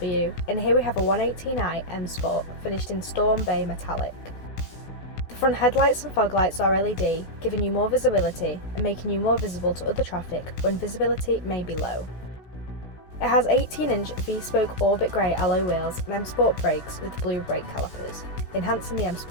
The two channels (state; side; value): late; right; 16 ms